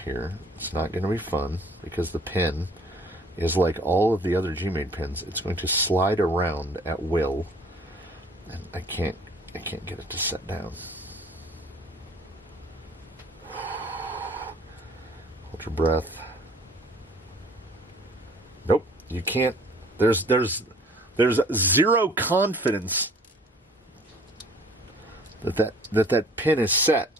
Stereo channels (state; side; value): normal; both; correlation 0.53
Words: here. It's not going to be fun because the pin is like all of the other Gmade pins. It's going to slide around at will, and I can't get it to set down. Hold your breath. Nope, you can't. There's zero confidence that pin is set.